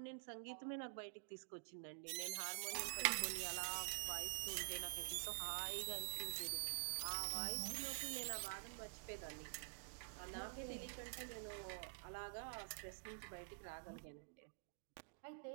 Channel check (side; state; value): left; silent; digital silence